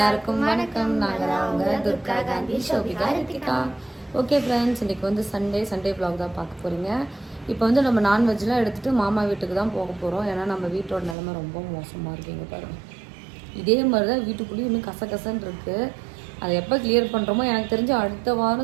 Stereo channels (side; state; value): left; drops out; at 11.2 s